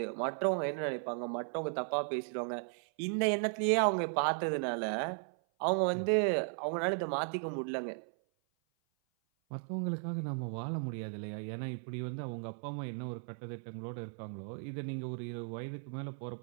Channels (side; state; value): left; silent; 54 dB below the other